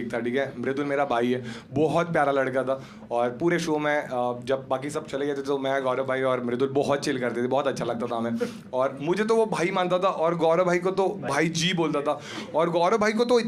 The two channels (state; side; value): identical; both; correlation 1.00